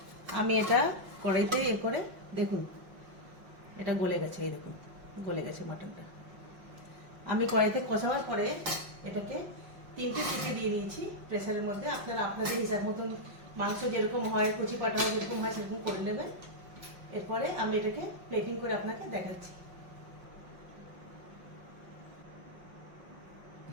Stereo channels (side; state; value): left; late; 5.5 ms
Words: আমি এটা কড়াইতে করে দেখুন এটা গলে গেছে, এই দেখুন গলে গেছে মাটনটা। আমি কড়াইতে কষাবার পরে এটাকে 3টে সিটি দিয়ে দিয়েছি প্রেসারের মধ্যে। আপনারা আপনাদের হিসাব মতন মাংস যেরকম হয়, কুচি পাটা হয় যেরকম হয় সেরকম করে নেবেন। এরপরে আমি এটাকে প্লেটিং করে আপনাকে দেখাচ্ছি।